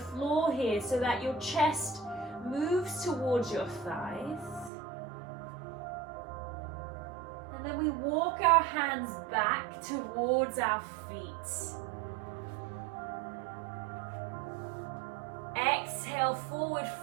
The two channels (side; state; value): left; drops out; at 4.7 s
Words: here so that your chest moves towards your thighs. And then we walk our hands back towards our feet. Exhale, forward